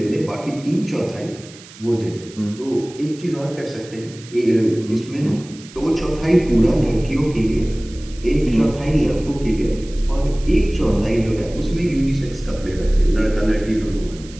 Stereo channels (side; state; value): right; noise; hiss, 20 dB below the sound